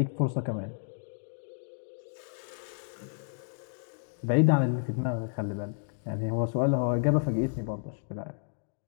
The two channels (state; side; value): silent; right; digital silence